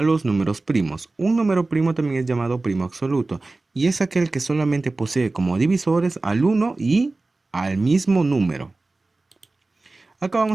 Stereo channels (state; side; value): quieter; left; 3.3 dB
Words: los números primos. Un número primo también es llamado primo absoluto y es aquel que solamente posee como divisores al 1 y al mismo número. Acá